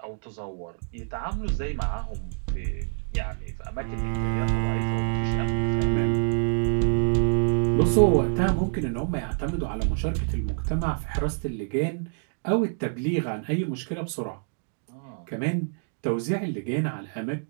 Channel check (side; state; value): left; silent; digital silence